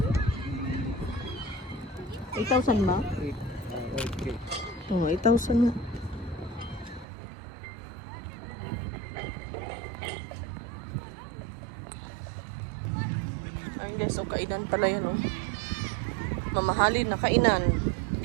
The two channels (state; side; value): drops out; left; at 7.1 s